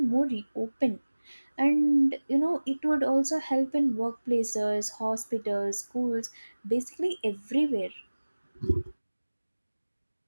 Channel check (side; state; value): both; inverted; correlation -1.00